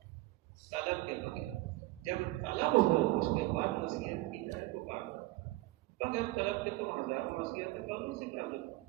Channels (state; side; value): quieter; left; 19.3 dB